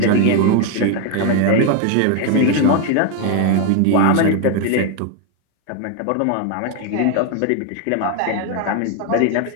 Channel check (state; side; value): different; both; correlation 0.01